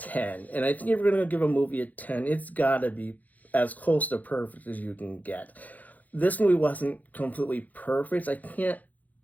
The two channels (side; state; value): right; late; 0.080 ms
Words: and I think if we're gonna give a movie a 10, it's gotta be as close to perfect as you can get. This movie wasn't completely perfect. I can't